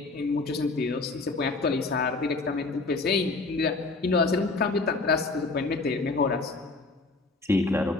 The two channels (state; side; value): quieter; right; 3.6 dB